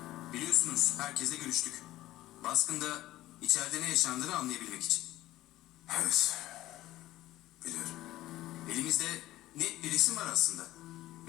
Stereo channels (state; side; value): quieter; right; 15.9 dB